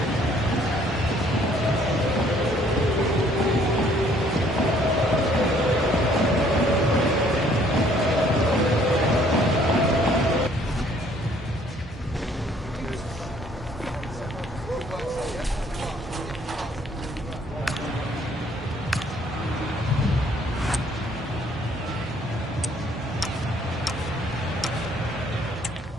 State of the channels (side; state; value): both; normal; correlation 0.61